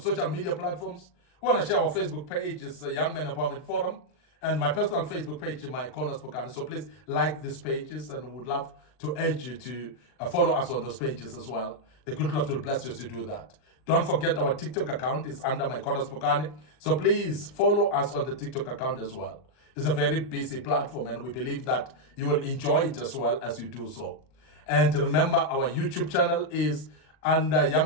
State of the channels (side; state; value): right; late; 39 ms